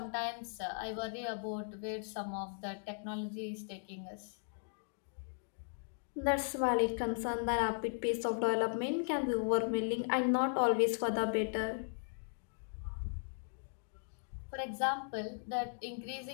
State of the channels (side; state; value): right; silent; digital silence